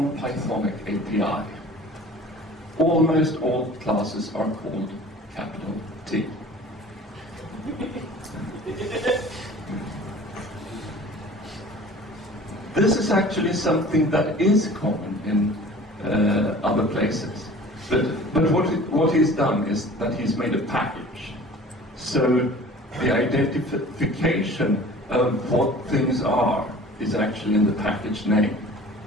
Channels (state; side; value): normal; both; correlation 0.44